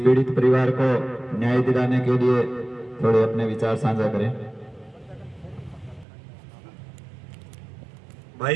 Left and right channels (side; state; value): left; drops out; at 6.1 s